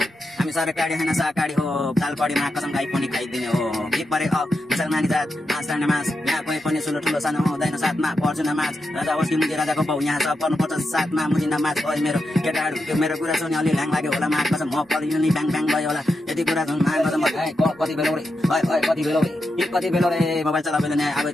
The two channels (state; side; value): normal; both; correlation 0.87